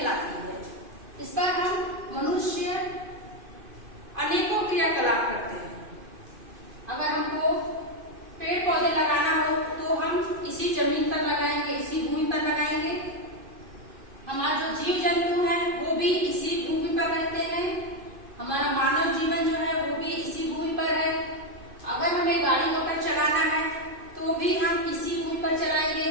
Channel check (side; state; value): left; late; 2.5 ms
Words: है। इस पर हम मनुष्य अनेकों क्रियाकलाप करते हैं। अगर हमको पेड़ पौधे लगाना हो तो हम इसी जमीन पर लगाएंगे, इसी भूमि पर लगाएंगे। हमारा जो जीव जंतु है वो भी इसी भूमि पर रहते हैं। हमारा मानव जीवन जो है वो भी इसी भूमि पर है। अगर हमें गाड़ी मोटर चलाना है तो भी हम इसी भूमि पर